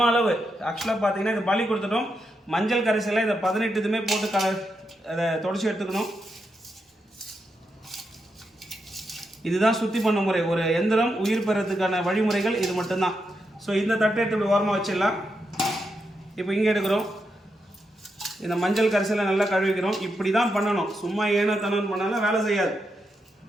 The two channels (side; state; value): both; normal; correlation 0.84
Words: அளவு ஆக்சுவலாக பார்த்தீங்கன்னா இந்த பலி கொடுத்துட்டோம். மஞ்சள் கரைசலை இந்த 18 இதுமே போட்டு அதை தொடச்சி எடுத்துக்கணும். இதுதான் சுத்தி பண்ண முறை. ஒரு எந்திரம் உயிர் பெறத்துக்கான வழிமுறைகள் இது மட்டும்தான். ஸோ இந்த தட்டை எடுத்து இப்படி ஓரமாக வச்சிடலாம். இப்போ இங்கே எடுக்கிறோம். இந்த மஞ்சள் கரைசலை நல்லா கழுவிக்கிறோம். இப்படி தான் பண்ணணும். சும்மா ஏனோ தனம் பண்ணாலும் வேலை செய்யாது.